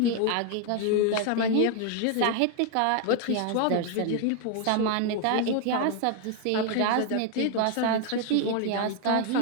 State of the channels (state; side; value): different; both; correlation 0.01